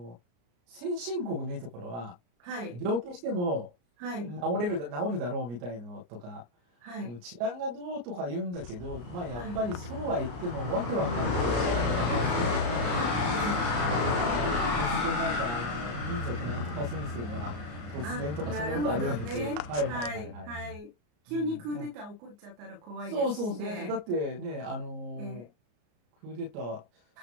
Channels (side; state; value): left; late; 34 ms